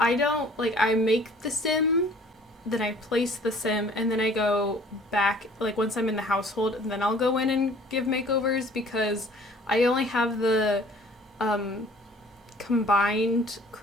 make the sim, then I place the sim, and then I go back, like once I'm in the household, and then I'll go in and give makeovers, because I only have the combined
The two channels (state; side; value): normal; both; correlation 0.53